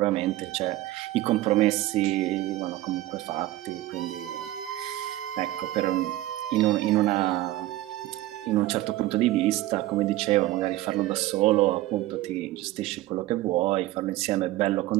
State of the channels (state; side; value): quieter; left; 16.0 dB